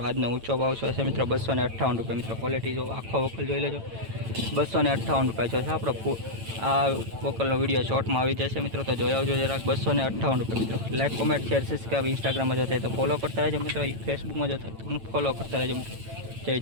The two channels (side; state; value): left; late; 9.0 ms